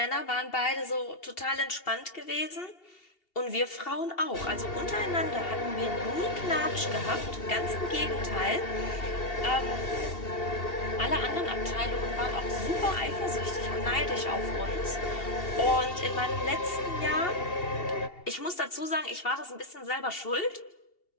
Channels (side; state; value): right; late; 2.7 ms